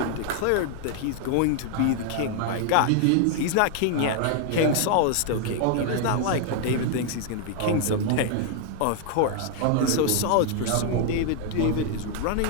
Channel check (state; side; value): different; both; correlation 0.00